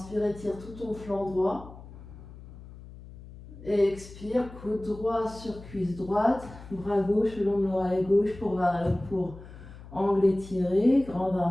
étire tout ton flanc droit. Expire, coude droit sur cuisse droite. Bras gauche le long de l'oreille gauche pour angle étiré. Grande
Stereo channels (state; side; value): noise; left; hum, 17 dB below the sound